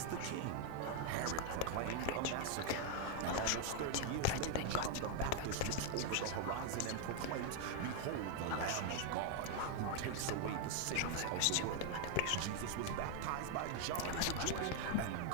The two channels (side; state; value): both; different; correlation 0.00